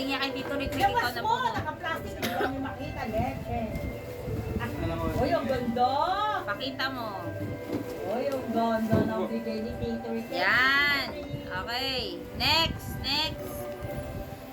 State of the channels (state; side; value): identical; both; correlation 1.00